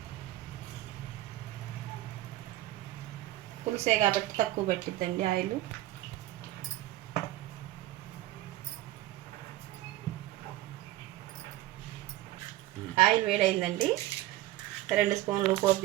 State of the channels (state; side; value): quieter; left; 15.9 dB